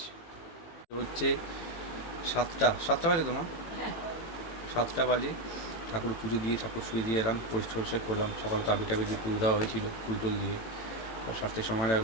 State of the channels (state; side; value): late; right; 18 ms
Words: হচ্ছে 7টা বাজে, তোমার 7টা বাজে। ঠাকুর পুজো দিয়ে ঠাকুর শুয়ে দিয়ে এলাম, পরিষ্কার করলাম। সকালে তাবি টাবি দিয়ে পুজো দেওয়া হয়েছিল, ফুল টুল দিয়ে। সারতে সময়